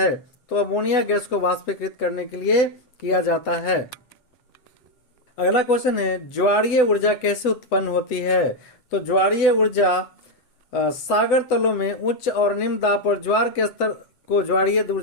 तो अमोनिया गैस को वाष्पीकृत करने के लिए किया जाता है। अगला क्वेश्चन है, ज्वारीय ऊर्जा कैसे उत्पन्न होती है? तो ज्वारीय ऊर्जा सागर तलों में उच्च और निम्न दाब पर ज्वार के स्तर को ज्वारीय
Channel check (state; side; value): late; right; 8.0 ms